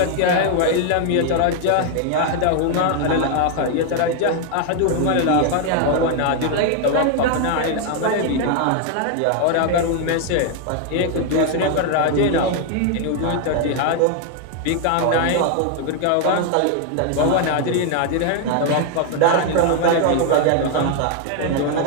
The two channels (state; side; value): different; both; correlation 0.00